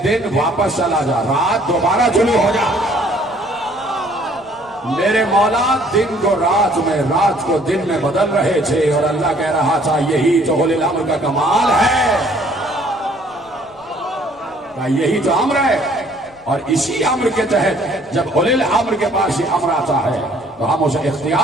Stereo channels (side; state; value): left; noise; rumble, 30 dB below the sound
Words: دن واپس چلا جا، رات دوبارہ طلوع ہو جا۔ میرے مولا دن کو رات میں، رات کو دن میں بدل رہے تھے، اور اللہ کہہ رہا تھا یہی تو اولی الامر کا کمال ہے، یہی تو امر ہے۔ اور اسی امر کے تحت جب اولی الامر کے پاس یہ امر آتا ہے تو ہم اسے